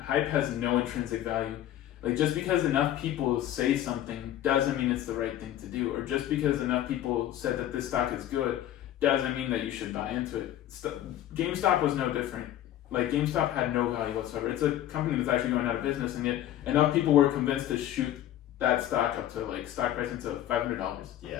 hype has no intrinsic value. Like just because enough people say something doesn't mean it's the right thing to do, or just because enough people said that this stock is good doesn't mean that you should buy into it. GameStop was no different. Like GameStop had no value whatsoever. It's a company that's actually going out of business, and yet enough people were convinced to shoot that stock up to like stock price into $500.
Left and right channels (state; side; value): quieter; right; 12.4 dB